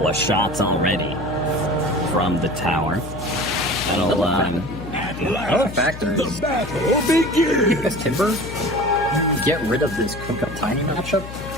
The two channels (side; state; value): left; noise; hum, 11 dB below the sound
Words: of shots already from the tower. That'll, Another factor is The battle begins! this Timber, get rid of this Kunkka Tiny matchup